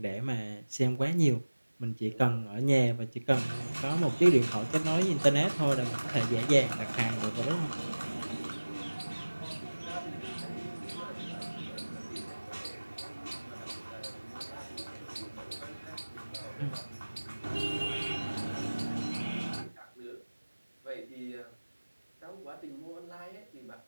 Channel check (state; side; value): inverted; both; correlation -1.00